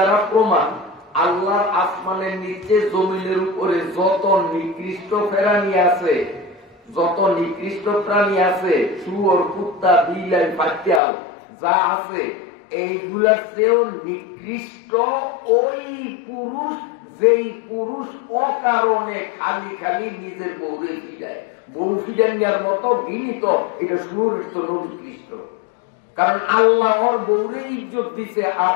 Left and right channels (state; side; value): drops out; right; at 11.0 s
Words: প্রমাণ, আল্লাহর আসমানের নিচে জমিনের উপরে যত নিকৃষ্ট প্রাণী আছে, যত নিকৃষ্ট প্রাণী আছে, শুয়োর, কুত্তা, বিলাই, পাতিয়াল যা আছে, এইগুলার চেয়েও নিকৃষ্ট ওই পুরুষ, যেই পুরুষ অকারণে খালি খালি নিজের বউরে ফিরায়। বউ ফিরানোর মতো গিনিত, এটা শুয়োরের তো নিকৃষ্ট। কারণ আল্লাহ ওর বউরে ইজ্জত দিছে আর